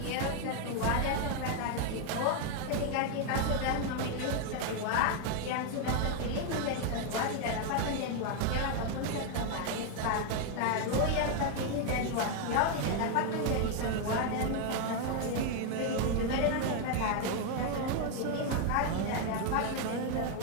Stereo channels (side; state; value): both; different; correlation 0.01